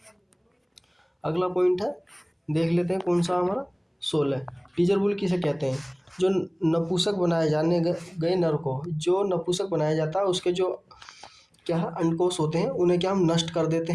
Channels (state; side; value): identical; both; correlation 1.00